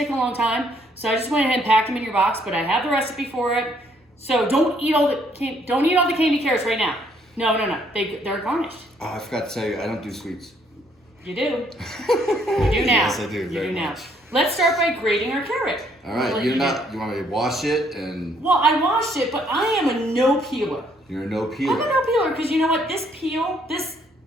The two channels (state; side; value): normal; both; correlation 0.67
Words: a long time, so I just went ahead and packed them in your box. But I have the recipe for it, so don't eat all the candy carrots right now. No. They're garnished. Oh, I forgot to tell you, I don't do sweets. You do. You do now. Yes, I do. You do now. Much. Let's start by grating our carrot. All right. You want me to wash it and? Well, I washed it, but I am a no peeler. You're a no peeler. I'm a no peeler because you know what? This peel, this